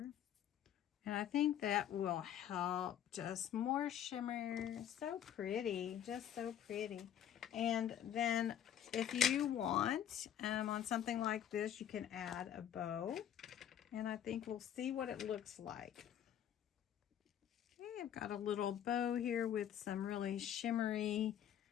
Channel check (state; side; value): quieter; right; 10.1 dB